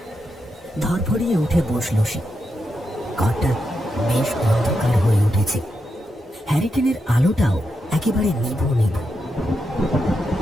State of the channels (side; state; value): both; normal; correlation 0.85